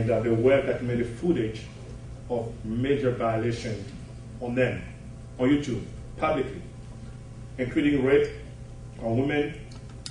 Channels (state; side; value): identical; both; correlation 1.00